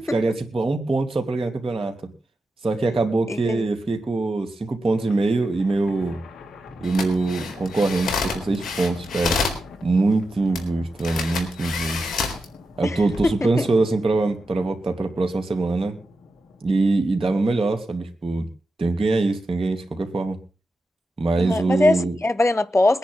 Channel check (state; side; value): normal; both; correlation 0.89